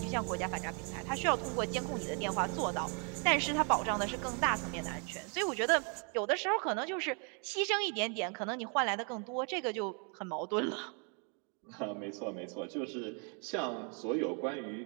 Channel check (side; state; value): left; quieter; 37.7 dB